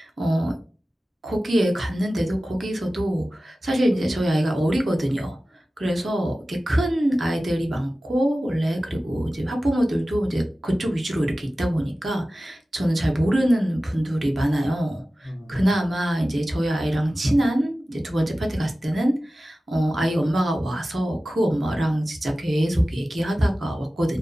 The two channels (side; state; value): both; normal; correlation 0.96